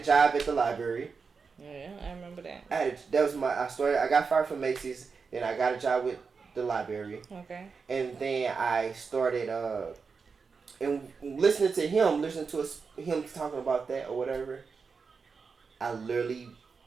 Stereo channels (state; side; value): quieter; left; 5.1 dB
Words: job at the library. Yeah, I remember that. I got fired from Macy's. Then I got a job with the library. Okay. And then I started and listening to him talking about that or whatever. I literally